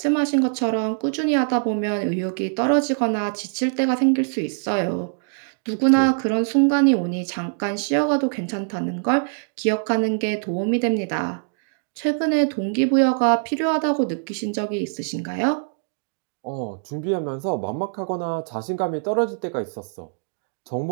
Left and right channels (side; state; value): left; silent; digital silence